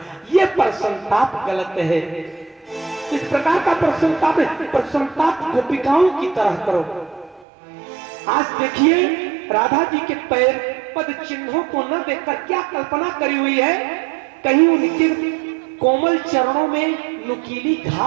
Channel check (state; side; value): drops out; left; at 7.5 s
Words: ये प्रसन्नताप गलत है। इस प्रकार का प्रसन्नताप गोपिकाओं की तरह करो। आज देखिए राधा जी के पैर पद चिन्हों को न देखकर क्या कल्पना करी हुई है, कहीं उनके कोमल चरणों में नुकीली